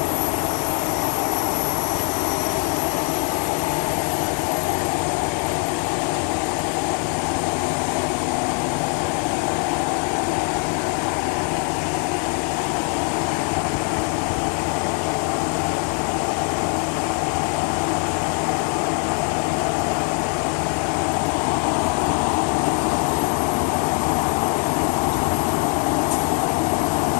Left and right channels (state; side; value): quieter; right; 39.9 dB